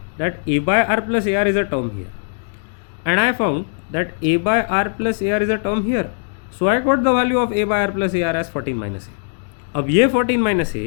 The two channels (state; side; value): silent; right; digital silence